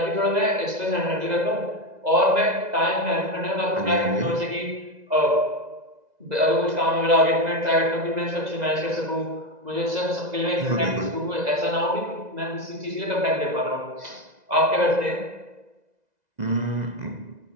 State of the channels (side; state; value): left; late; 2.0 ms